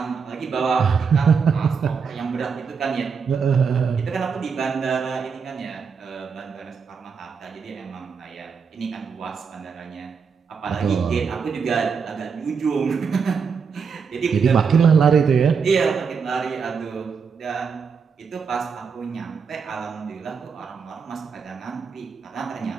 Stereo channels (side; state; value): left; quieter; 5.9 dB